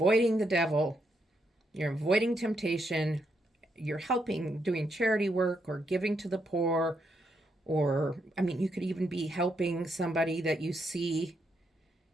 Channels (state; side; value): normal; both; correlation 0.79